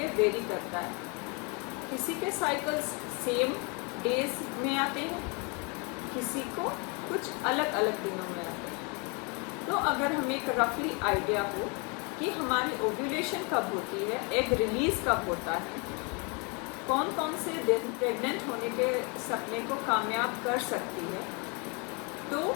वेरी करता है। किसी के साइकिल्स सेम डेज में आते हैं, किसी को कुछ अलग अलग दिनों में आते हैं। तो अगर हमें एक रफली आइडिया हो कि हमारी ओव्यूलेशन कब होती है, एग रिलीज़ कब होता है, कौन कौन से दिन प्रेग्नेंट होने के सपने को कामयाब कर सकती है, तो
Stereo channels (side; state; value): right; quieter; 32.5 dB